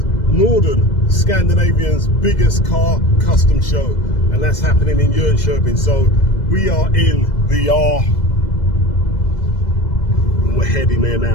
Norden, Scandinavia's biggest car custom show. And that's happening in Jönköping. So we are in the we're heading there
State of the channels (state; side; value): late; right; 2.0 ms